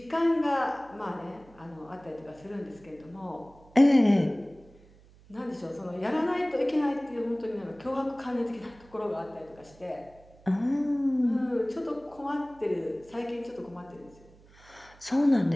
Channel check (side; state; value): right; noise; hum, 25 dB below the sound